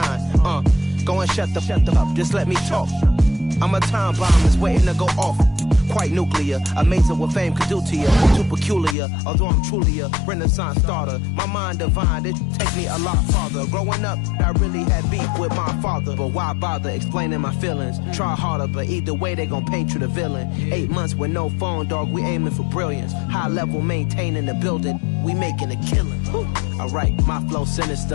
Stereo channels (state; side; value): drops out; right; at 9.0 s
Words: Go and shut the up, just let me talk. I'm a time bomb that's waiting to go off. Quite nuclear, amazing what fame could do to you. Too peculiar, although I'm truly a renaissance starter. My mind divine, it take me a lot farther. Growing up, I really had beef with my father. But why bother explaining my feelings? Try harder, but either way they gon' paint you the villain. 8 months with no phone, dog, we aiming for brilliance. High level maintaining the building, we making a killing. Alright, my flow